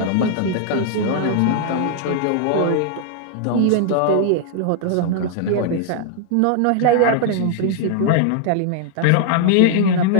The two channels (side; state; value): both; different; correlation 0.00